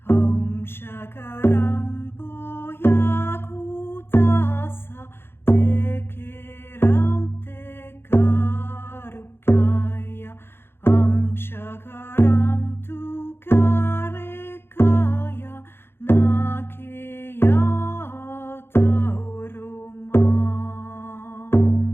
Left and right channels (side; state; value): right; late; 0.11 ms